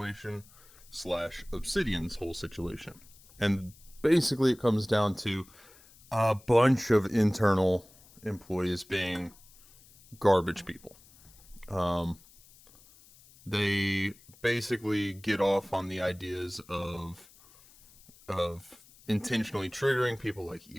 slash Obsidian's whole situation. And basically, it comes down to a bunch of internal employees being garbage people. They basically get off on the ideas of intentionally triggering people like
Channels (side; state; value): left; noise; hiss, 25 dB below the sound